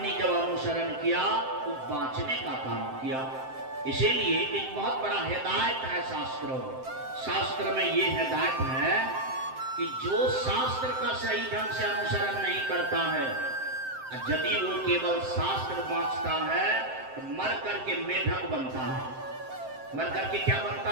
जब अनुसरण किया तो बांचने का काम किया। इसीलिए एक बहुत बड़ा हिदायत है शास्त्रों में। शास्त्र में ये हिदायत है कि जो शास्त्र का सही ढंग से अनुसरण नहीं करता है, यदि वो केवल शास्त्र बांचता है तो मर करके मेढक बनता है। मर करके क्या बनता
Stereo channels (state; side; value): late; left; 7.7 ms